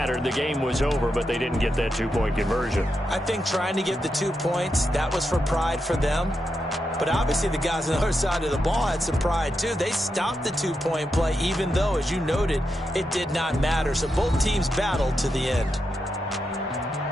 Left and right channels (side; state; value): both; normal; correlation 0.86